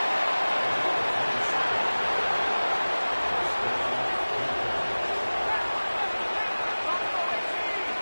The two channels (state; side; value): inverted; both; correlation -1.00